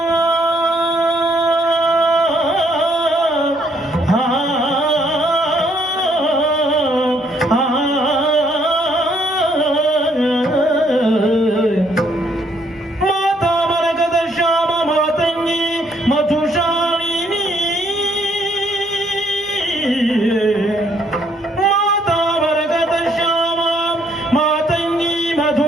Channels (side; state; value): both; normal; correlation 0.68